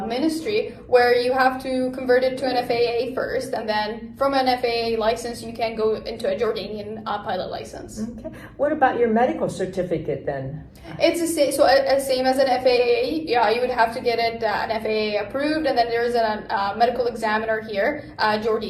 ministry, where you have to convert it to an FAA first, and then from an FAA license you can go into a Jordanian pilot license. Okay. What about your medical certificate then? It's the same, same as an FAA. Yeah, you would have to get it an FAA approved, and then there's a medical examiner here,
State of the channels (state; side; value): identical; both; correlation 1.00